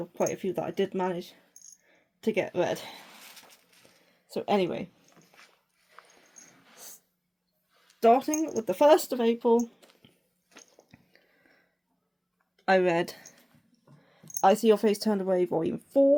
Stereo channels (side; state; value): both; identical; correlation 1.00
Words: quite a few that I did manage to get read. So anyway, starting with the 1st of April, I read I See Your Face Turned Away, Volume